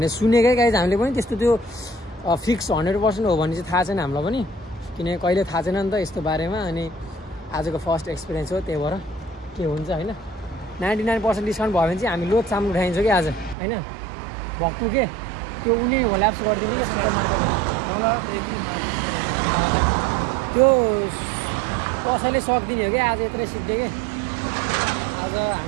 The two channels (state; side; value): drops out; left; at 13.6 s